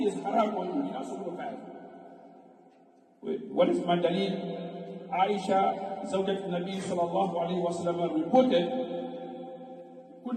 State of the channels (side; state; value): both; identical; correlation 1.00